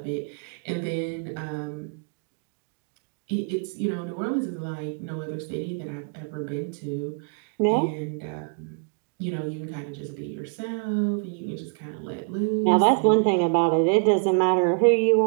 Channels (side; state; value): left; quieter; 39.9 dB